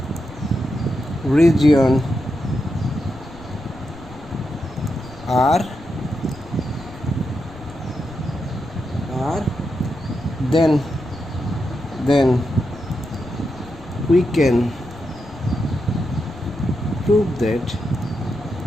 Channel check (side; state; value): left; noise; rumble, 18 dB below the sound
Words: region R, then we can prove that